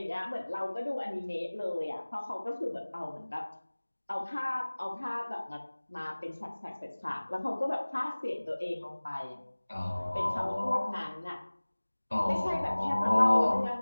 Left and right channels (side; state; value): both; inverted; correlation -1.00